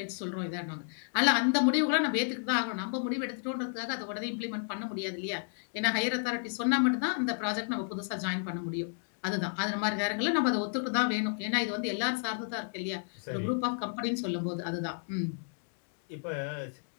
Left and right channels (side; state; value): right; silent; 56 dB below the other